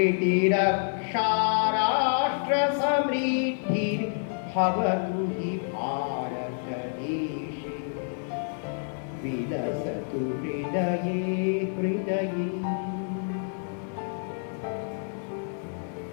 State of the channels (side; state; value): right; silent; 56 dB below the other